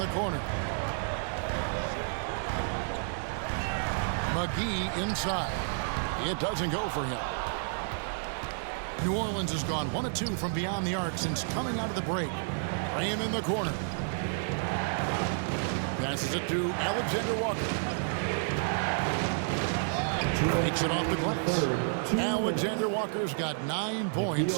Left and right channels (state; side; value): silent; left; 57 dB below the other